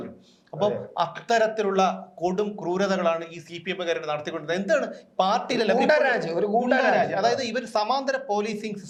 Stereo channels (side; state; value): both; identical; correlation 1.00